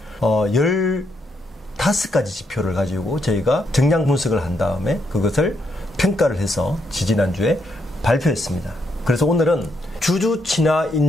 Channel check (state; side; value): normal; both; correlation 0.78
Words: 15가지 지표를 가지고 저희가 정량 분석을 한 다음에 그것을 평가를 해서 지지난주에 발표했습니다. 그래서 오늘은 주주 친화